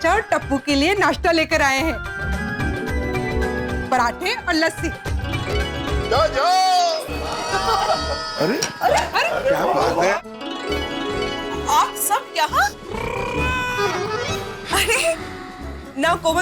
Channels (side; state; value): both; identical; correlation 1.00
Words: और टप्पू के लिए नाश्ता लेकर आए हैं, पराठे और लस्सी। जो जो। अरे अरे क्या बात है? आप सब यहाँ? अरे ना